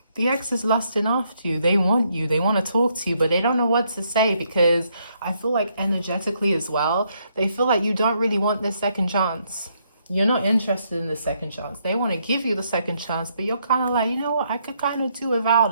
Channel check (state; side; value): inverted; both; correlation -0.74